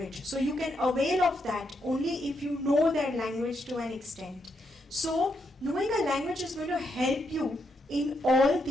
So you can avail of that only if you know their language to an extent. So knowing a language is going to help you in all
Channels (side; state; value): both; normal; correlation 0.80